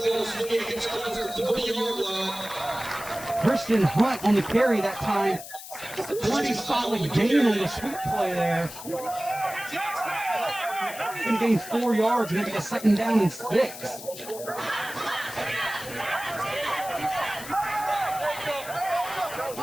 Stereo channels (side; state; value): left; noise; hiss, 13 dB below the sound